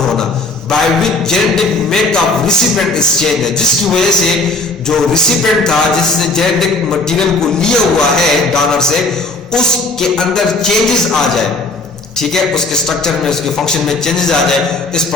होना, by which genetic makeup recipient is change, जिसकी वजह से जो रिसिपिएंट था जिसने जेनेटिक मटेरियल को लिया हुआ है डोनर से, उसके अंदर चेंजेस आ जाए, ठीक है, उसके स्ट्रक्चर में, उसके फंक्शन में चेंजेस आ जाए, इस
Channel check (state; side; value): quieter; right; 3.2 dB